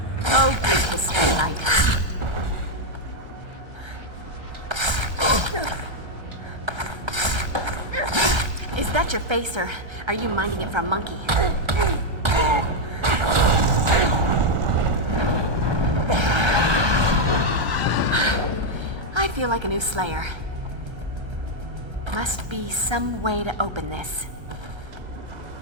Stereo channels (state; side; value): late; left; 1.3 ms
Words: Oh, good history light. Is that your face, or are you minding it for a monkey? I feel like a new Slayer. Must be some way to open this.